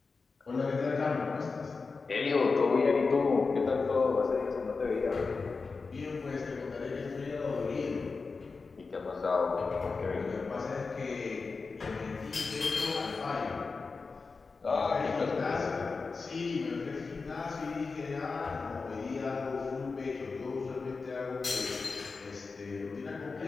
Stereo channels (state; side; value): quieter; right; 4.4 dB